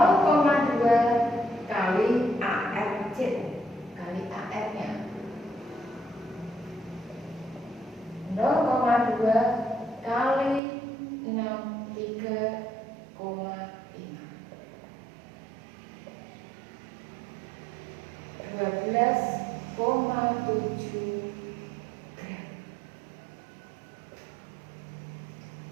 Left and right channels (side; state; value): left; drops out; at 10.6 s